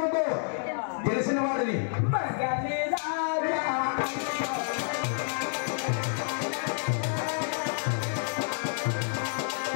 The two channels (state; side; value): silent; right; digital silence